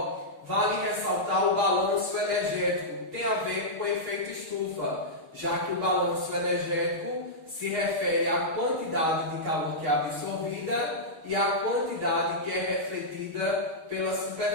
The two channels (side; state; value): left; late; 6.5 ms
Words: vale ressaltar o balanço energético, que tem a ver com o efeito estufa, já que o balanço energético se refere à quantidade de calor que é absorvida e à quantidade que é refletida pela